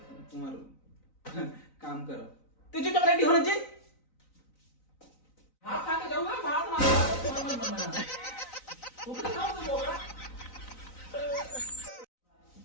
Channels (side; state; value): right; late; 3.9 ms